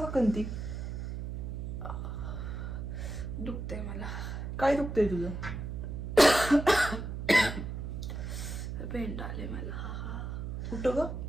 का कंती? दुखते मला. काय दुखतंय तुझं? पेंट आले मला. कुठं ग?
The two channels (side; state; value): right; noise; hum, 5 dB below the sound